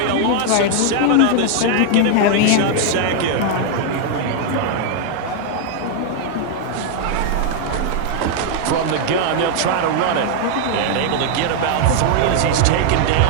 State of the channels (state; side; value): different; both; correlation 0.00